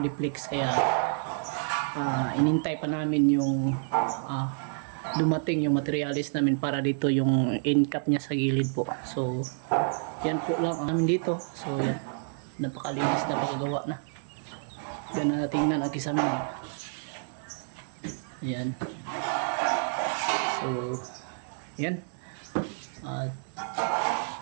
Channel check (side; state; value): left; silent; digital silence